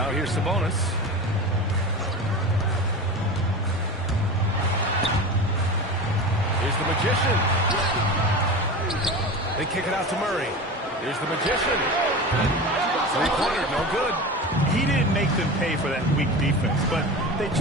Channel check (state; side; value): normal; both; correlation 0.29